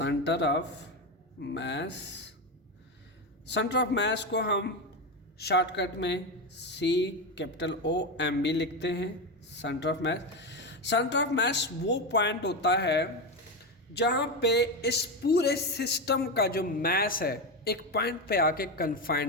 of mass, centre of mass को हम शॉर्टकट में CO लिखते हैं। Centre of mass, centre of mass वो पॉइंट होता है जहाँ पे इस पूरे सिस्टम का जो मैस है एक पॉइंट पे आके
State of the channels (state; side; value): normal; both; correlation 0.14